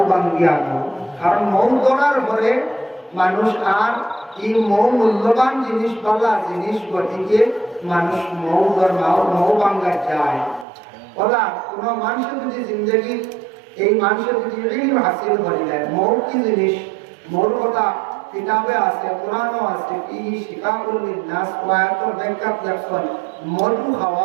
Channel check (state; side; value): drops out; left; at 10.7 s